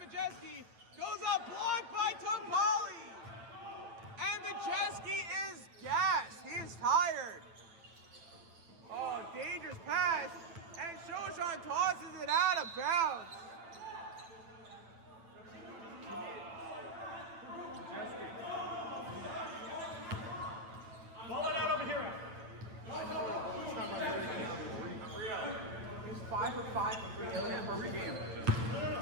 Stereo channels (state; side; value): late; left; 9.0 ms